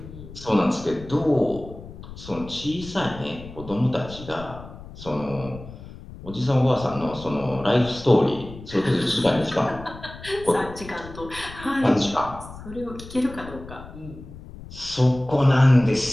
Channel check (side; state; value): left; noise; rumble, 15 dB below the sound